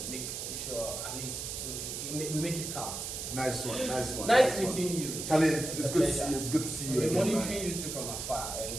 make sure at least we make it count. Nice one. Nice meeting you. Charlie, it's good to see you. It's good to see you I've been again, monitoring you too from afar.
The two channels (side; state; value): right; noise; hiss, 5 dB below the sound